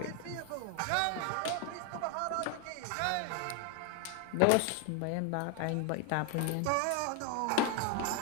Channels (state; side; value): different; both; correlation 0.01